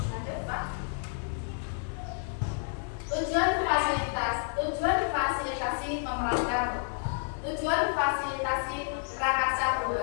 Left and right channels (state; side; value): silent; right; 58 dB below the other